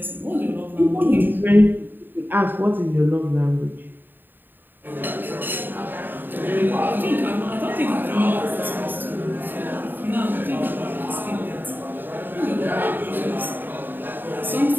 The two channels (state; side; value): late; left; 0.093 ms